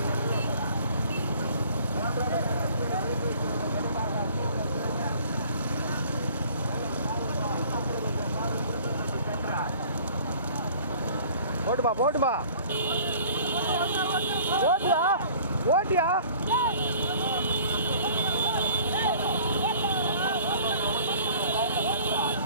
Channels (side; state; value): both; inverted; correlation -0.51